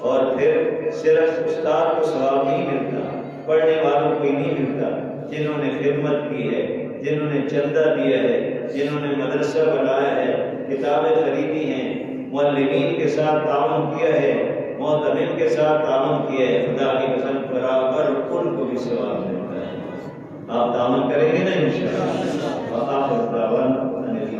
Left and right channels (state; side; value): identical; both; correlation 1.00